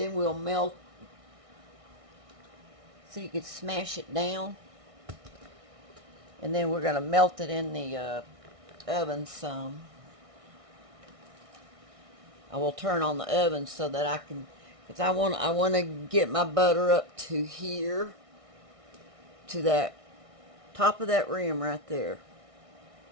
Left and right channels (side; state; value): left; late; 1.6 ms